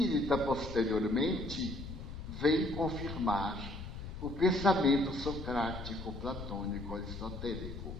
posteriormente, vem confirmar o pensamento socrático, platônico, aristotélico,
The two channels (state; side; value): noise; left; rumble, 9 dB below the sound